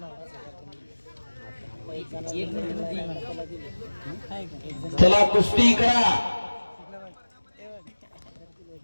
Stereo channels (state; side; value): inverted; both; correlation -1.00